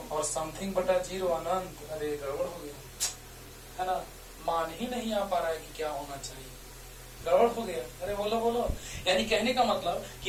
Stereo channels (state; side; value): identical; both; correlation 1.00